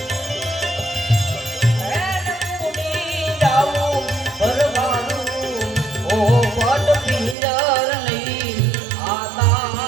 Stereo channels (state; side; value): drops out; left; at 7.4 s